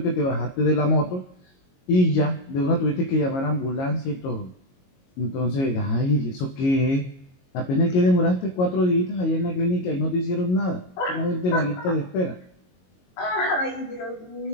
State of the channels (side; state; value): right; late; 22 ms